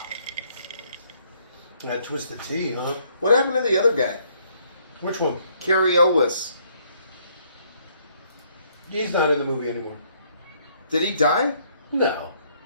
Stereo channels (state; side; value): inverted; both; correlation -0.67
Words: That twisted tea, huh? What happened to the other guy? Which one? Cary Elwes. He's not in the movie anymore. Did he die? No.